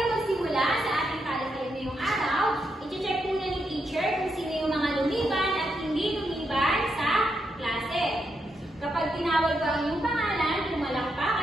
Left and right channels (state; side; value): normal; both; correlation 0.82